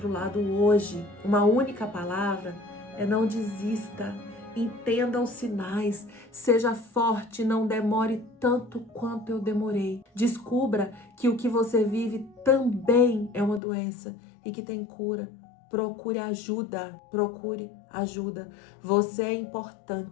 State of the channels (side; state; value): right; drops out; at 13.6 s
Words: lado hoje, uma única palavra, é não desista. Entenda os sinais, seja forte, não demore tanto quanto eu demorei. Descubra que o que você vive também é uma doença e que tem cura. Procure ajuda, procure ajuda. Você é